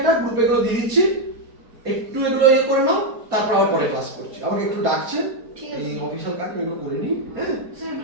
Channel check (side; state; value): left; late; 4.3 ms